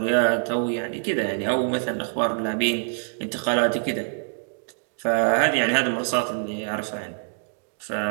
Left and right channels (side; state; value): left; silent; digital silence